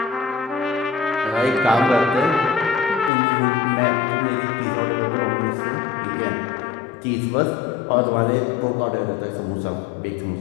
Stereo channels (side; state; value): right; drops out; at 3.1 s